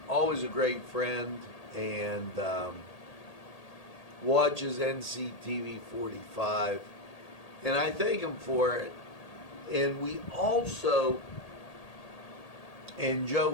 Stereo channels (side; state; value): right; late; 1.8 ms